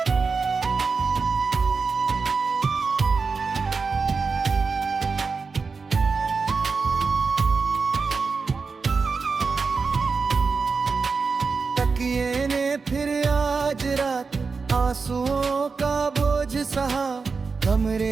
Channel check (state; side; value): quieter; left; 4.8 dB